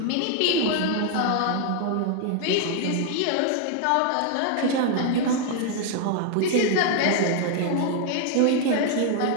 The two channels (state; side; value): different; both; correlation 0.00